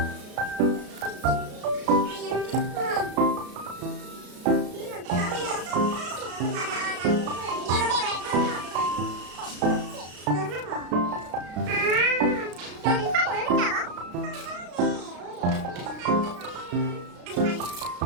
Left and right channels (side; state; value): left; late; 33 ms